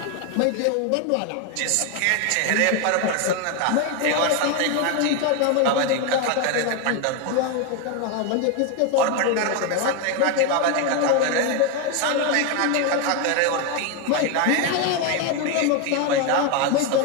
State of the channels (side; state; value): both; different; correlation 0.01